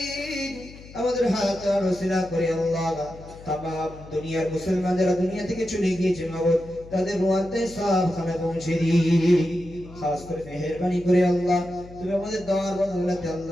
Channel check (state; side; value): noise; left; hum, 18 dB below the sound